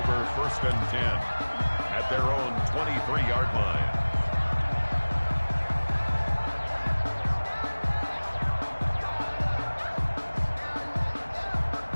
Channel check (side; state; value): both; inverted; correlation -1.00